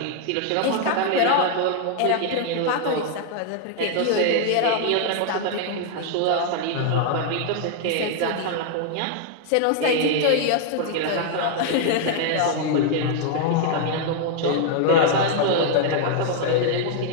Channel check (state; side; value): different; both; correlation 0.00